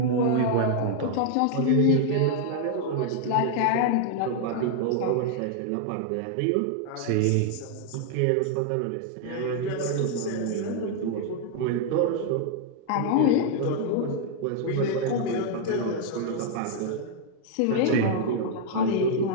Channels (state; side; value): different; both; correlation 0.00